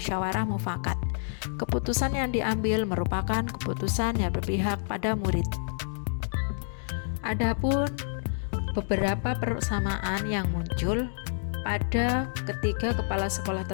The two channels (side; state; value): right; silent; digital silence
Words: mufakat. Keputusan yang diambil merupakan keputusan yang berpihak pada murid. Adapun beberapa persamaan yang muncul pada ketiga kepala sekolah